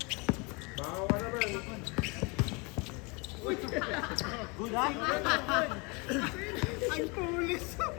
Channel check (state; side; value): quieter; right; 29.5 dB